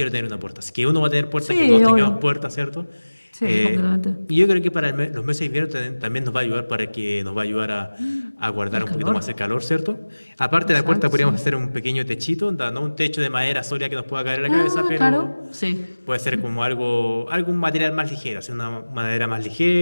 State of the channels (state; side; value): inverted; both; correlation -1.00